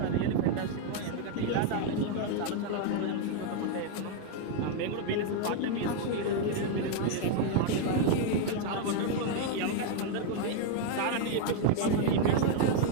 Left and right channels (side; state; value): both; different; correlation 0.00